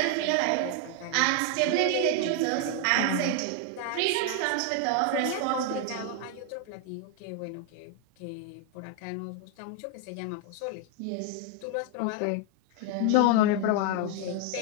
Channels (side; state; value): both; different; correlation 0.01